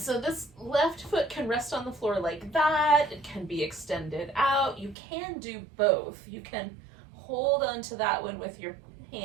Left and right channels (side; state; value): left; drops out; at 5.0 s